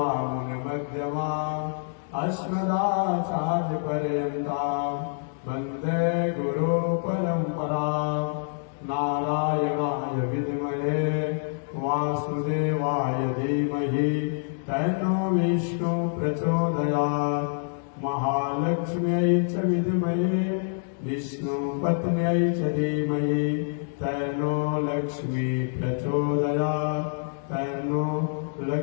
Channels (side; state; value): right; silent; digital silence